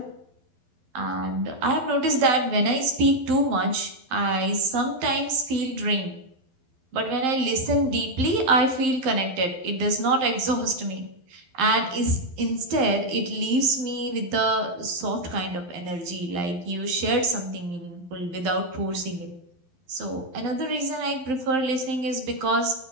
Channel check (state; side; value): late; left; 11 ms